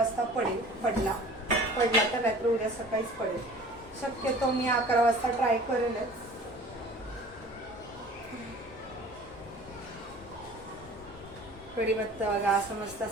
पडला तर रात्री उद्या सकाळीच पडेल. शक्यतो मी 11 वाजता ट्राय करेलच. कढीपत्ता बघा असं मस्त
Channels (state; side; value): normal; both; correlation 0.45